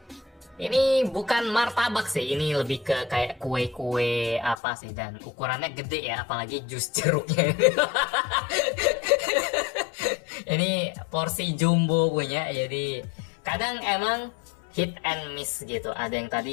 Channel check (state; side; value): drops out; right; at 4.5 s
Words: Ini bukan martabak sih, ini lebih ke kayak kue-kue apa sih, dan ukurannya gede ya, apalagi jus jeruknya. Ini porsi jumbo punya, jadi kadang emang hit and miss gitu. Ada yang